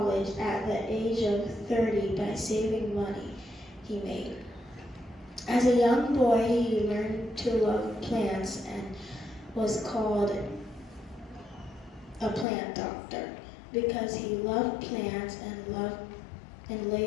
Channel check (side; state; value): right; drops out; at 12.5 s